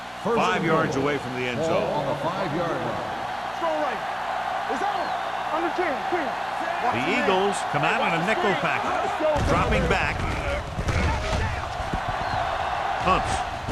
5 yards away from the end Ball zone. on the 5-yard line. Throw right. It's out. Under 10. Clear. The Eagles come out in a nickel package. Dropping back. Pumps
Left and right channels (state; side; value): identical; both; correlation 1.00